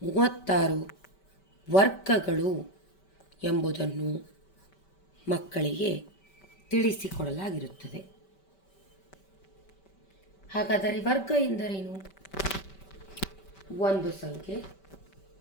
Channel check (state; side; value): late; right; 5.2 ms